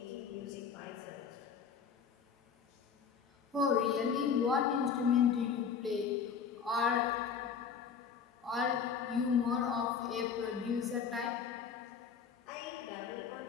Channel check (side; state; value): right; quieter; 6.6 dB